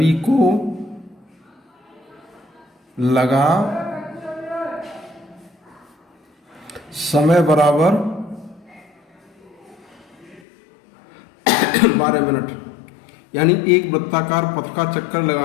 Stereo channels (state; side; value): drops out; right; at 10.4 s